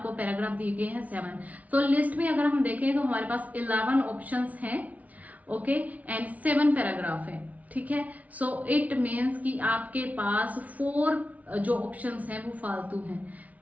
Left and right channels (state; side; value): late; left; 0.071 ms